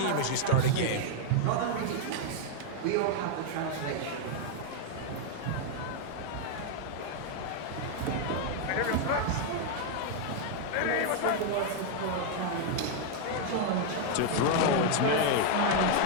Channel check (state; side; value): different; both; correlation 0.00